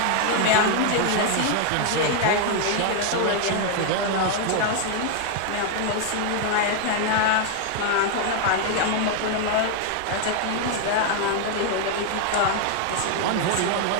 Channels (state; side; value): different; both; correlation 0.00